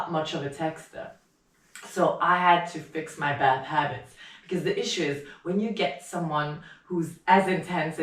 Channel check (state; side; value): identical; both; correlation 1.00